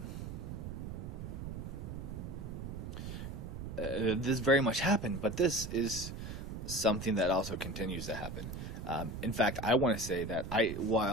This very much happened, but this is something that also continues to happen. In fact, I want to say that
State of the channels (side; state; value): right; noise; rumble, 7 dB below the sound